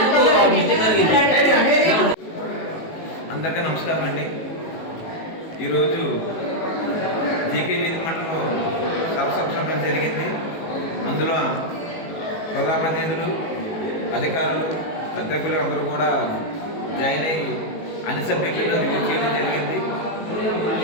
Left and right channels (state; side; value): late; right; 18 ms